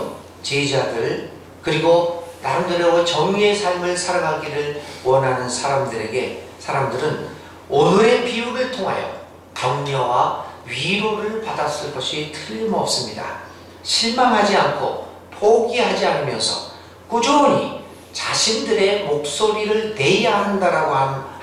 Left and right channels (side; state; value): both; identical; correlation 1.00